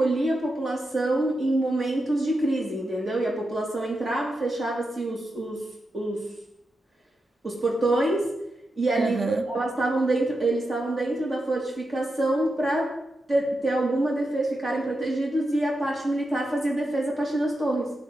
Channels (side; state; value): both; normal; correlation 0.88